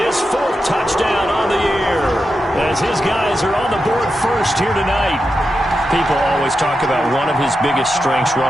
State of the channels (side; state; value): both; normal; correlation 0.88